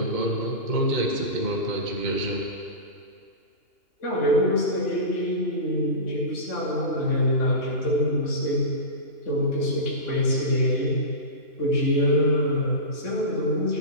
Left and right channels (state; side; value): late; right; 2.8 ms